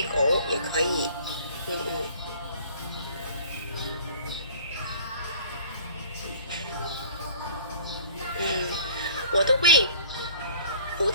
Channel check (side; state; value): both; inverted; correlation -0.50